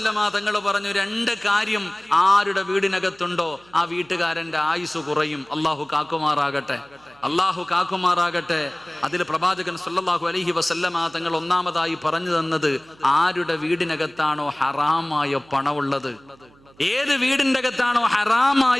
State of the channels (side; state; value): right; noise; hum, 28 dB below the sound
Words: തങ്ങൾ പറഞ്ഞു, 2 കാര്യം ആരുടെ വീടിനകത്തുണ്ടോ ആ വീട്ടുകാരന്റെ ആയുസ് കുറയും. അള്ളാഹു കാക്കുമാറാകട്ടെ, അള്ളാഹു കാക്കുമാറാകട്ടെ. അതിൽ പ്രവാചകൻ സ്വല്ലല്ലാഹു അലൈഹി വസല്ലമ തങ്ങൾ ഒന്നാമതായി പറഞ്ഞു തന്നത്, ആരുടെ വീടിനകത്താണോ ഹറാമായ പണമുള്ളത്, ഏത് വീടിന്റെ അകത്താണോ